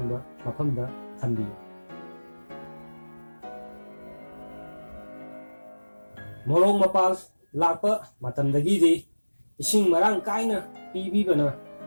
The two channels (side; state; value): both; inverted; correlation -1.00